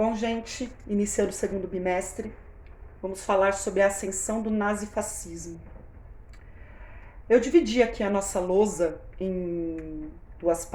gente, iniciando o segundo bimestre, vamos falar sobre a ascensão do nazifascismo. Eu dividi aqui a nossa lousa em duas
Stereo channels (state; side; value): identical; both; correlation 1.00